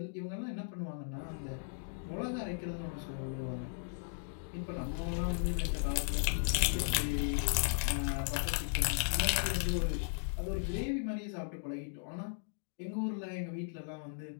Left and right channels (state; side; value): silent; right; digital silence